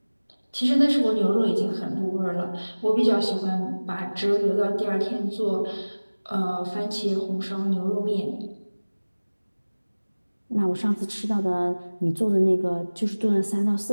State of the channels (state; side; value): inverted; both; correlation -1.00